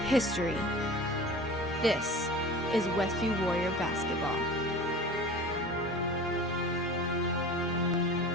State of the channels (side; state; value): both; normal; correlation 0.38